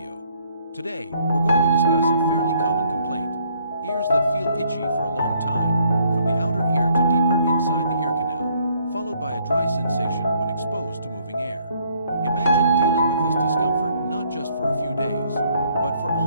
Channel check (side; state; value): both; inverted; correlation -0.66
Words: Today, we're going to discuss a fairly common complaint: ears that feel itchy for a long time, from the outer ear to deeper inside the ear canal, followed by a dry sensation when exposed to moving air. Imagine dealing with this discomfort not just for a few days, but for